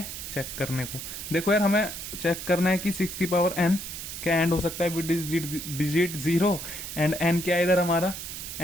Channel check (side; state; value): right; noise; hiss, 8 dB below the sound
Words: चेक करने को देखो यार, हमें चेक करना है कि 6 की पावर n क्या एंड हो सकता है विद डिजिट 0 एंड n क्या है इधर हमारा,